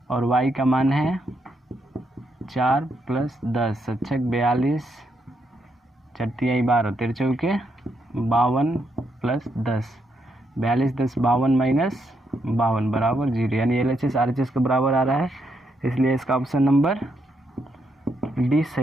और y का मान है 4 प्लस 10, 7 6 42, 4 तियाई 12, 13 चौके 52 प्लस 10, 42 10 52 माइनस 52 बराबर 0, यानी LHS RHS के बराबर आ रहा है, इसलिए इसका ऑप्शन नंबर डी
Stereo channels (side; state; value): both; normal; correlation 0.79